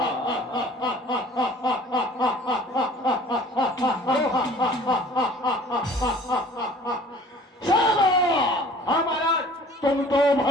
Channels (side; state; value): both; normal; correlation 0.49